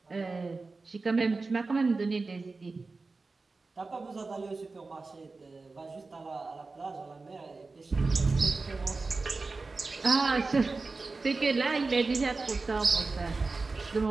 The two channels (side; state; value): left; quieter; 3.8 dB